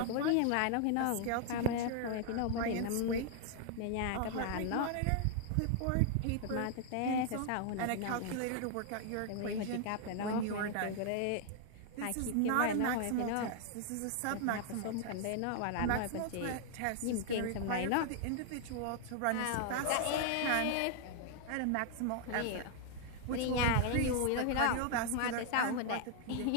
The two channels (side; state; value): both; different; correlation 0.00